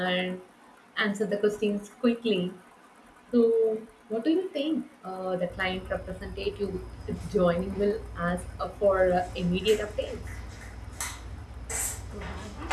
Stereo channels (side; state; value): both; identical; correlation 1.00